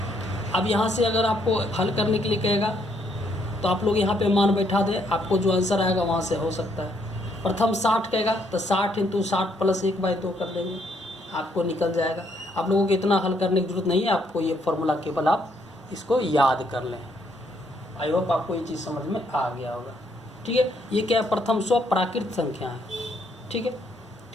अब यहाँ से अगर आपको हल करने के लिए कहेगा तो आप लोग यहाँ पे मान बैठा दे, आपको जो आंसर आएगा वहाँ से हो सकता है। प्रथम 60 कहेगा तो 60 इंटू 60 प्लस 1/2 कर देंगे, आपको निकल जाएगा। आप लोगों को इतना हल करने की जरूरत नहीं है, आपको ये फॉर्मूला केवल आप इसको याद कर लें। आई होप आपको ये चीज़ समझ में आ गया होगा, ठीक है। ये क्या है, प्रथम 100 प्राकृत संख्या है, ठीक है।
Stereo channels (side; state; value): both; normal; correlation 0.71